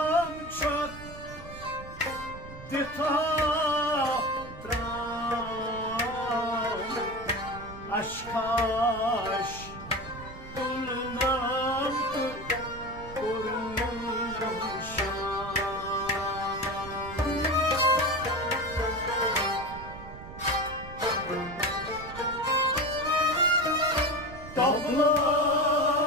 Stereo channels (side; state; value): right; noise; rumble, 14 dB below the sound